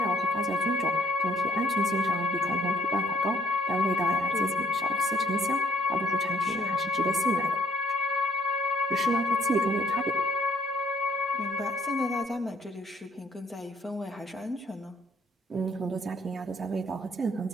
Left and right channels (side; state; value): both; normal; correlation 0.65